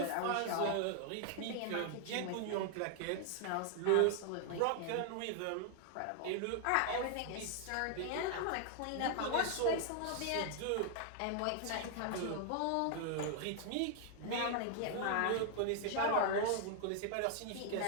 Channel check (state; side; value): different; both; correlation 0.00